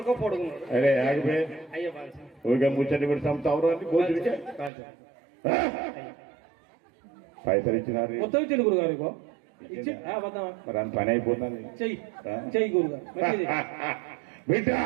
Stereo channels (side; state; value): left; drops out; at 4.7 s